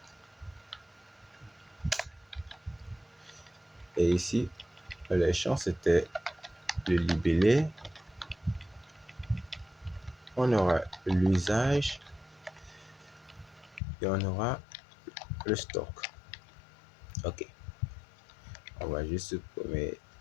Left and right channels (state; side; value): drops out; right; at 13.8 s